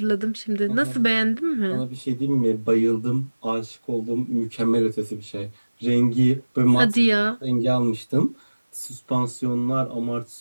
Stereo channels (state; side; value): inverted; both; correlation -1.00